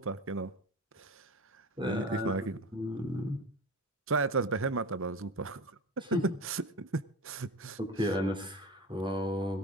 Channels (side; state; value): both; normal; correlation 0.30